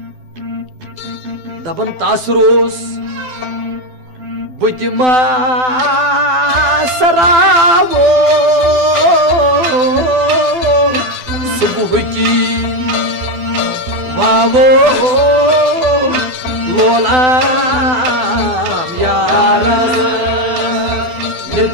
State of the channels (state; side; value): late; left; 12 ms